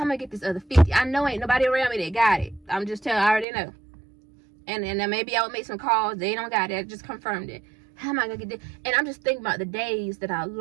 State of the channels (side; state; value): left; drops out; at 3.5 s